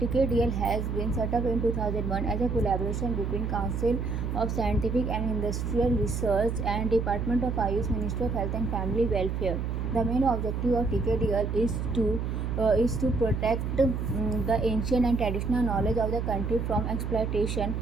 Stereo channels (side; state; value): right; noise; hum, 2 dB below the sound